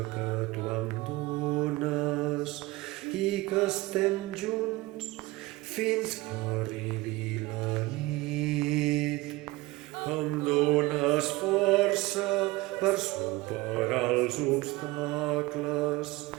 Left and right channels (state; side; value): quieter; left; 19.9 dB